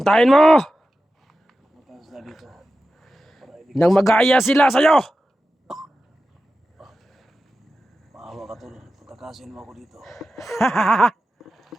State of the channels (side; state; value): both; normal; correlation 0.92